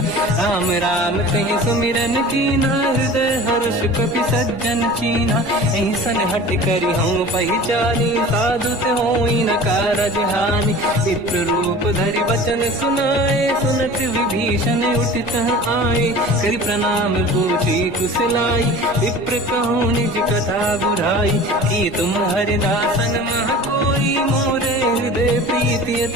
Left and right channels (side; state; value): right; noise; rumble, 21 dB below the sound